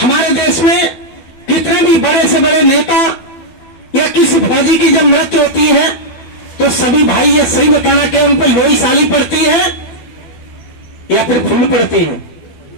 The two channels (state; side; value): late; right; 12 ms